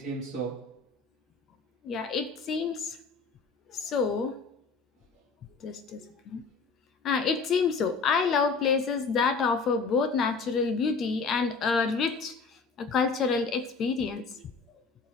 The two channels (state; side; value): quieter; right; 4.6 dB